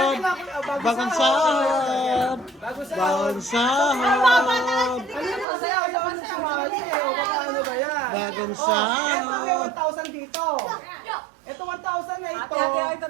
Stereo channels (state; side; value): drops out; left; at 5.5 s